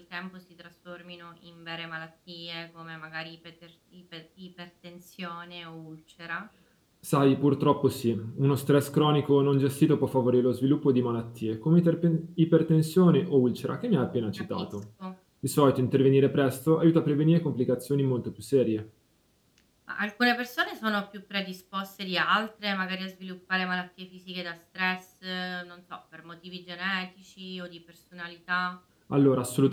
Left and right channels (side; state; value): both; identical; correlation 1.00